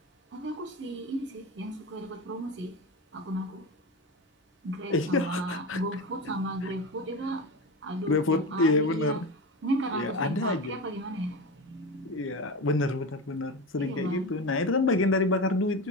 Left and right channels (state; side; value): normal; both; correlation 0.23